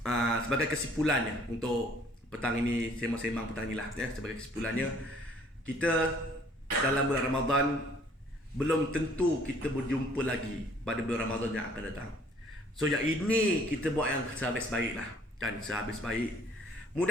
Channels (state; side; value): normal; both; correlation 0.58